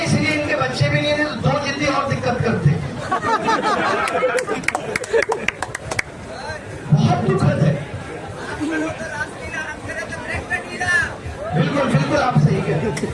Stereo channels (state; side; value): identical; both; correlation 1.00